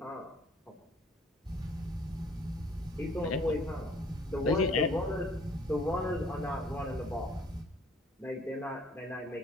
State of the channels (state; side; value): normal; both; correlation 0.56